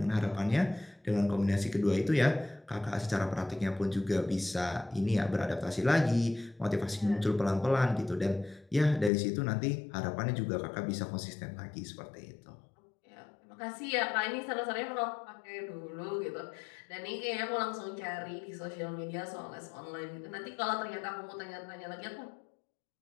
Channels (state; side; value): drops out; right; at 9.1 s